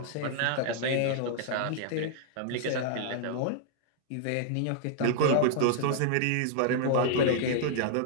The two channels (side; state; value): both; different; correlation -0.01